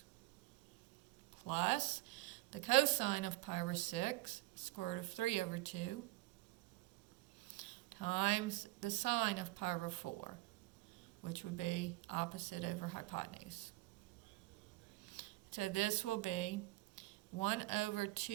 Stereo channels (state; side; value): quieter; left; 19.3 dB